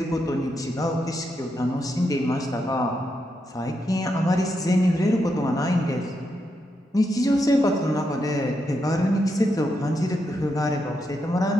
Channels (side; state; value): both; normal; correlation 0.83